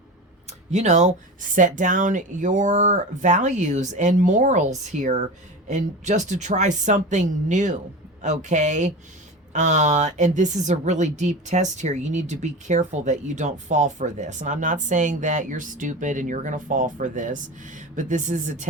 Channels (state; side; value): normal; both; correlation 0.29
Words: you know, set down your values and morals here and just to try something new. Okay. And this is a really deep test here. You need to be careful that you don't fall for this. And I'm not saying that you're stupid and you're going to fall for this, but this is a